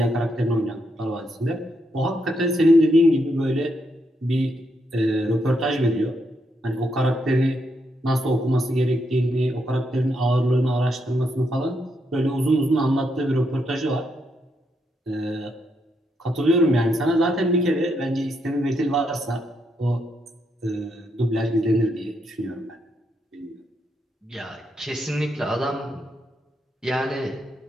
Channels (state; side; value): normal; both; correlation 0.79